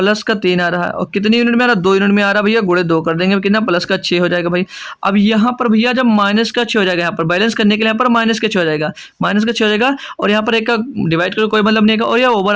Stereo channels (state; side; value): identical; both; correlation 1.00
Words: का 3 आ रहा है, और कितनी यूनिट में आ रहा है, 2 यूनिट में आ रहा है भैया, गुणे 2 कर देंगे कितना, प्लस का 6 हो जाएगा भाई। अब यहाँ पर भैया जब माइनस का 6 हो जाएगा, यहाँ पर बैलेंस करने के लिए यहाँ पर माइनस का 6 हो जाएगा, माइनस का 6 हो जाएगा, और यहाँ पर एक का डिवाइड करो कोई मतलब नहीं है, और यह